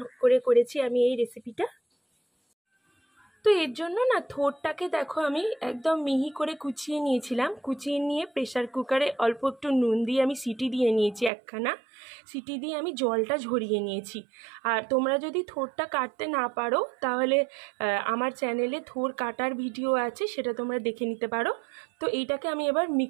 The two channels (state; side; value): drops out; left; at 11.3 s